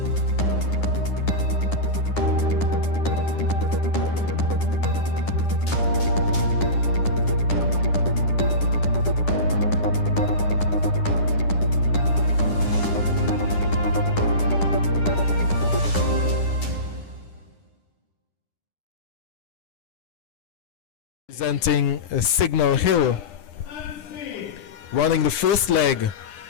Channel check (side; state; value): right; late; 10 ms